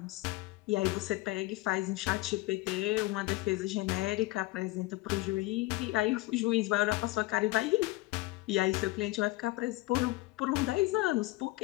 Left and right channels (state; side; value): quieter; right; 20.2 dB